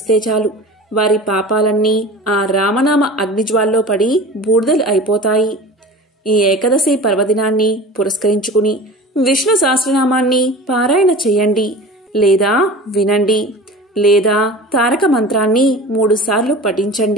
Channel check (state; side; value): normal; both; correlation 0.37